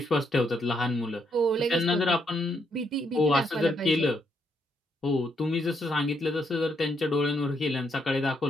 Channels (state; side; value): normal; both; correlation 0.76